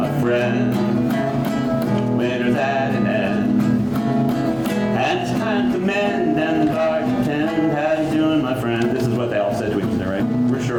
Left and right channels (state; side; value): identical; both; correlation 1.00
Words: friend? Winter's at an end, and it's time to mend and the garden tend. How you doing, my friend? This is what they all said to each other, right? We're